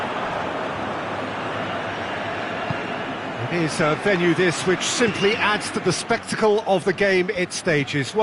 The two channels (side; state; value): both; identical; correlation 1.00